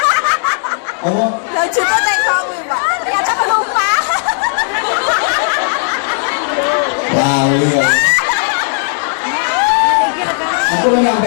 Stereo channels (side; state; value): right; silent; 61 dB below the other